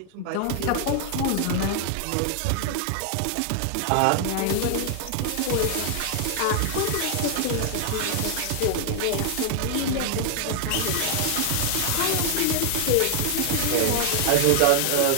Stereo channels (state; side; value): different; both; correlation 0.00